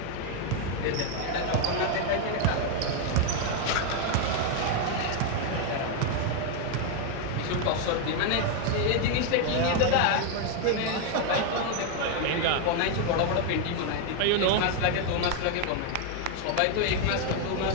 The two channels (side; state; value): both; different; correlation 0.01